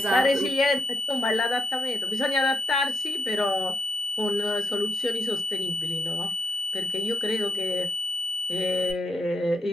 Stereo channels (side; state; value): both; normal; correlation 0.81